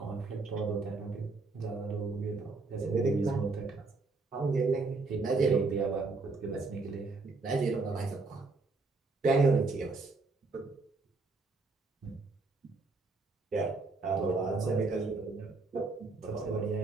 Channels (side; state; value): left; quieter; 3.7 dB